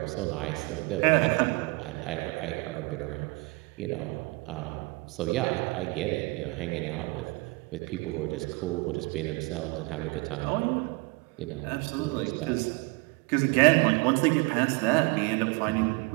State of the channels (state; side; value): quieter; left; 26.6 dB